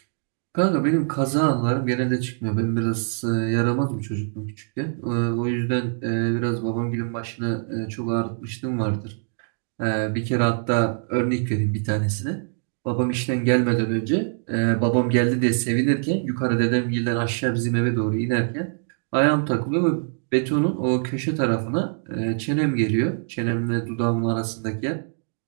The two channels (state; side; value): silent; left; digital silence